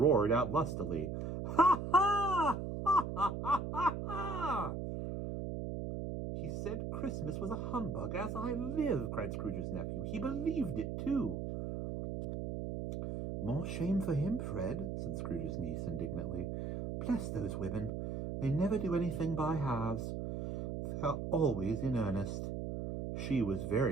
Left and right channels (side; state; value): right; noise; hum, 4 dB below the sound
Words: out lustily, "Ha, ha! Ha, ha, ha, ha, ha!" "He said Christmas was a humbug, as I live," cried Scrooge's nephew. "He believed it, too." "More shame for him, Fred," said Scrooge's niece indignantly. "Bless those women. They never do anything by halves. They are always in earnest." She was